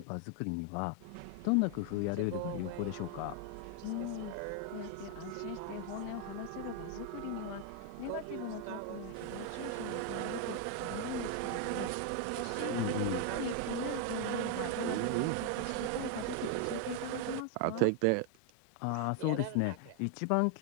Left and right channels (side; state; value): both; different; correlation 0.01